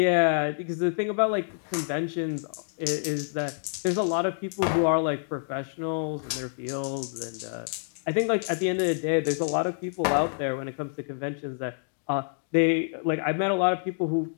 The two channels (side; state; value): right; silent; digital silence